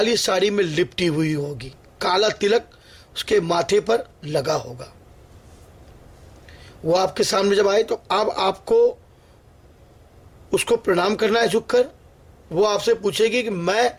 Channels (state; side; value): identical; both; correlation 1.00